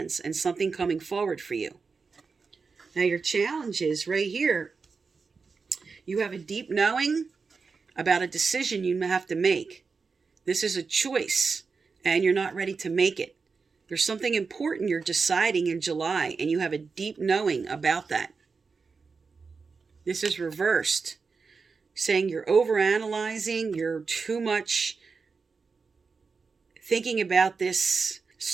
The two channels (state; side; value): quieter; left; 4.8 dB